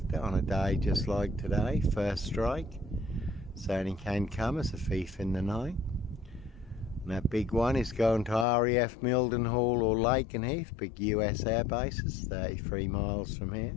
it, on a day just like today. First strike certainly can come as a thief in the night. And that big one is going to RAF Mildenhall or Lakenheath, big US air bases, 33 miles from here.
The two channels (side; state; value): right; drops out; at 8.5 s